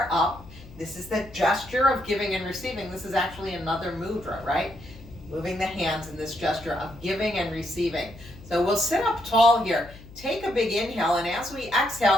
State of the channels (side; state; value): left; noise; hum, 18 dB below the sound